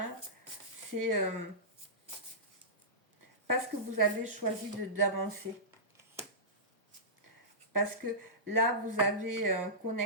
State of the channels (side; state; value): both; normal; correlation -0.18